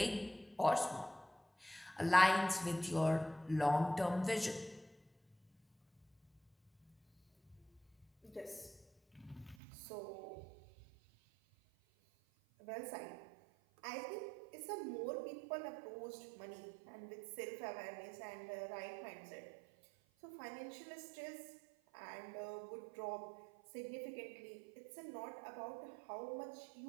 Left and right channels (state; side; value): drops out; left; at 9.6 s